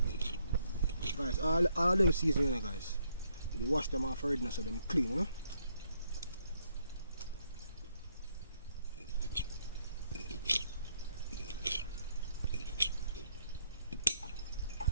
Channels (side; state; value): both; inverted; correlation -0.72